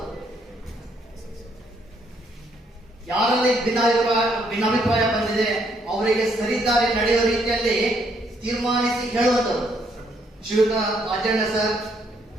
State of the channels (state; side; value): normal; both; correlation 0.71